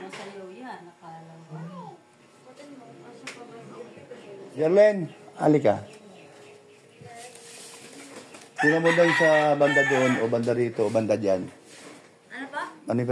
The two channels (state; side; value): identical; both; correlation 1.00